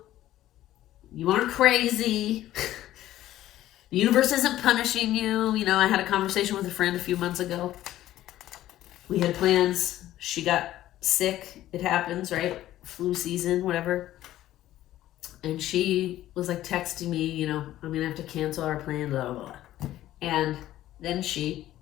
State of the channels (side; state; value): right; quieter; 13.9 dB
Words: You aren't crazy. The universe isn't punishing you. You know, I had a conversation with a friend a few months ago. We had plans. She got sick. It happens, right? Flu season, whatever. And she was like texting me, you know, I'm going to have to cancel our plan, blah, blah, blah. And then